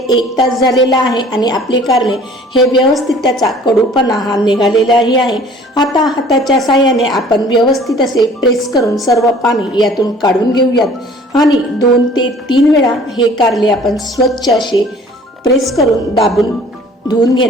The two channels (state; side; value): normal; both; correlation 0.51